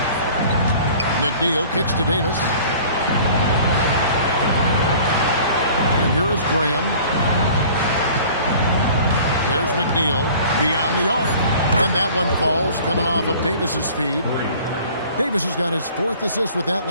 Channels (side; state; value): both; inverted; correlation -0.48